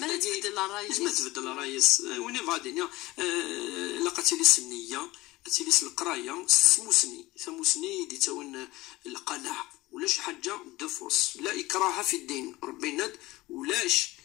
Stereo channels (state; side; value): quieter; right; 19.6 dB